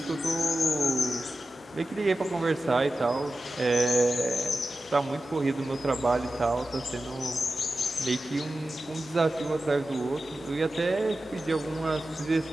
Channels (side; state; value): both; normal; correlation 0.93